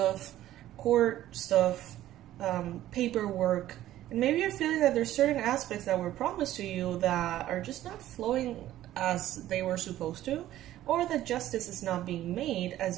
court stuff, paperwork, and maybe you're feeling that there's certain aspects that were promised to you that are just not flowing as they were supposed to, or that justice is not being made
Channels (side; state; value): left; quieter; 13.7 dB